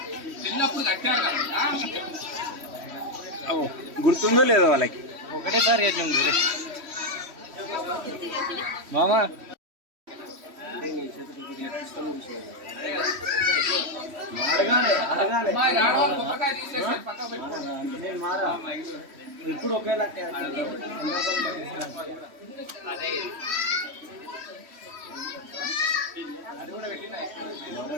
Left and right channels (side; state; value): left; late; 3.1 ms